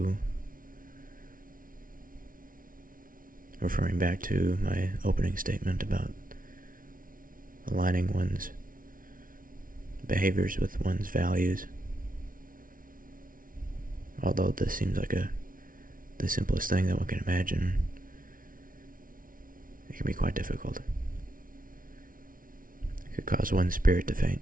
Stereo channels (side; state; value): left; late; 0.40 ms